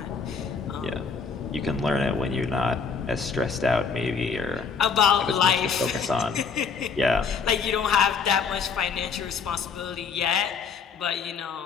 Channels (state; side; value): quieter; right; 5.6 dB